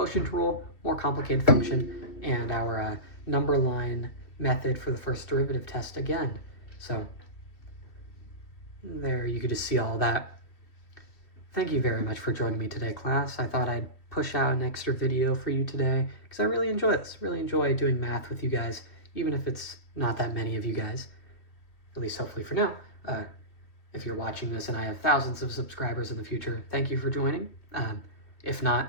rule, more complicated function, and our number line method for the first derivative test again. So, there you could just see all that. Thank you very much for joining me today, class. I thought I'd push out an extra video for you today because I really enjoy this. Really enjoy doing math with you guys, even if it's not that many of you guys, at least hopefully for now. If you're watching this and I have thousands of subscribers in the future, thank you for joining. If not,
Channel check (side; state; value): right; late; 2.5 ms